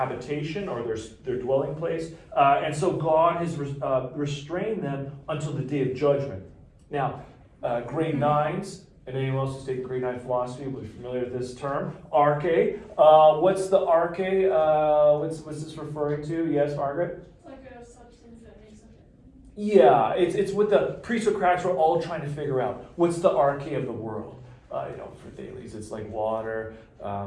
or their dwelling place, and so God has restrained them until the day of judgment. Now, grade 9s, and anyone else who's taking grade 9 philosophy will be familiar with this term, arche. What's the arche? What's this referring to? Yes, Margaret? It's like a substance that makes up it. Yeah, it's what the pre-Socratics were all trying to figure out. What's the arche of the world? For Thales, it's like water.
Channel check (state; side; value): identical; both; correlation 1.00